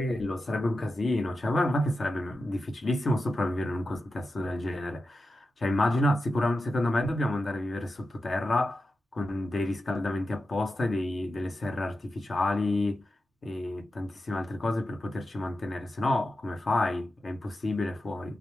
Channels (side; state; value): both; normal; correlation 0.91